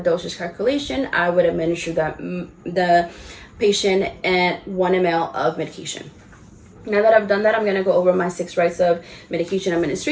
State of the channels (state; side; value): identical; both; correlation 1.00